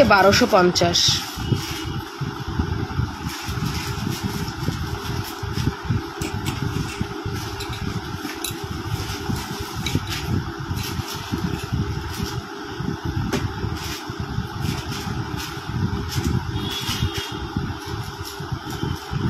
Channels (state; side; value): identical; both; correlation 1.00